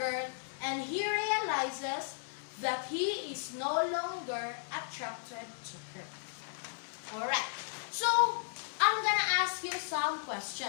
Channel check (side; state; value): right; silent; 54 dB below the other